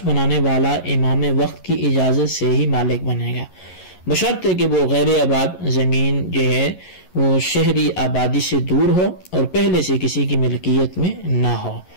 بنانے والا امام وقت کی اجازت سے ہی مالک بنے گا، بشرطے کہ وہ غیر آباد زمین جو ہے وہ شہری آبادی سے دور ہو اور پہلے سے کسی کی ملکیت میں نہ ہو۔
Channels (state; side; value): late; right; 11 ms